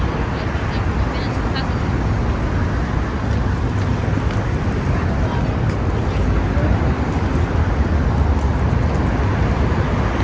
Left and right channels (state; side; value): identical; both; correlation 1.00